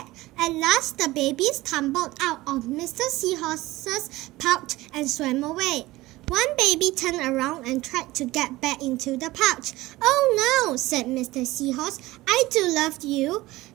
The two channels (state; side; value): quieter; left; 18.6 dB